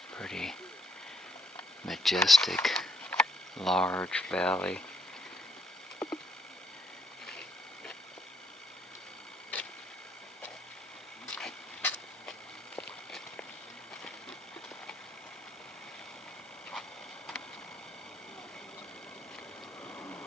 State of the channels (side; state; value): both; normal; correlation 0.70